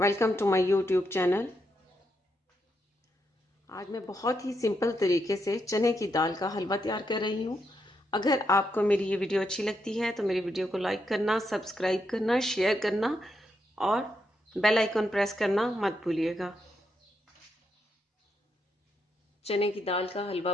to my YouTube channel. आज मैं बहुत ही सिंपल तरीके से चने की दाल का हलवा तैयार कर रही हूँ। अगर आपको मेरी ये वीडियो अच्छी लगती है तो मेरी वीडियो को लाइक करना, सब्सक्राइब करना, शेयर करना और बेल आइकन प्रेस करना मत भूलिएगा। चने की दाल का हलवा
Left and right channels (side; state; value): both; normal; correlation 0.81